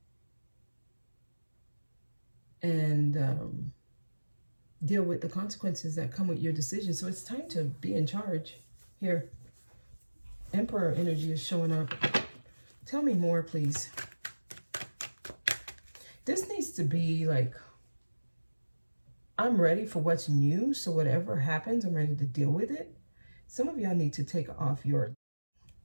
and deal with the consequences that come with your decision. So it's time to be in charge here. Emperor energy is showing up. Tell me more, please. This needs to be like, I'm ready for what's new. So whatever happens, I'm ready to deal with it. Some of y'all need to take off your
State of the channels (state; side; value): inverted; both; correlation -1.00